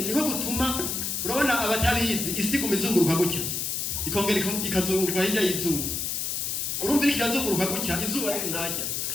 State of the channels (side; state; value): left; noise; hiss, 1 dB below the sound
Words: niko gutuma urabona abatabizi isi kumizunguruka gutya ikongera ikazunguruka hirya y'izuba urumva ikazunguruka gutya izuba riri ntajya